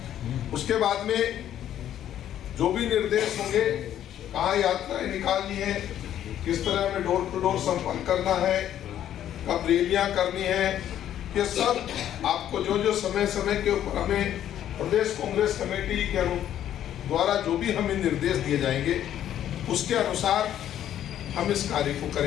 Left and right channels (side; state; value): right; quieter; 11.0 dB